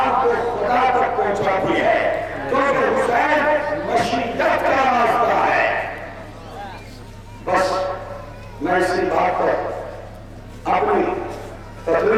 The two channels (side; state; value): both; identical; correlation 1.00